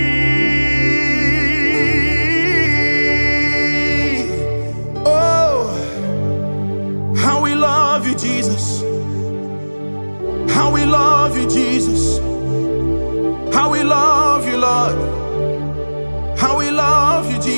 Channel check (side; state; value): both; inverted; correlation -1.00